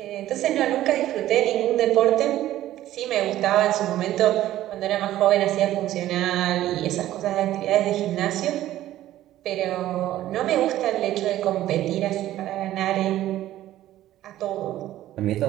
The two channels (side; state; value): left; quieter; 13.8 dB